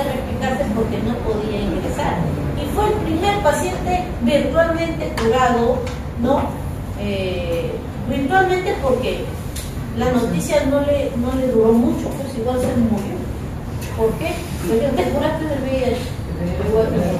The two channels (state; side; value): identical; both; correlation 1.00